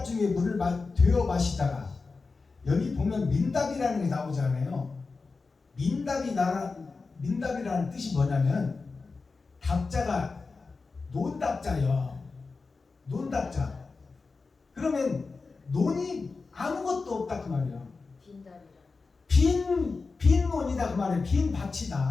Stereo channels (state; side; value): quieter; right; 4.2 dB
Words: 중에 물을 되어 마시다가 여기 보면 민답이라는 게 나오잖아요. 민답이라는 뜻이 뭐냐면 답자가 논답자요. 논답자. 그러면 논이 아무것도 없다 그 말이에요. 빈답이라. 빈 논이다 그 말이에요. 빈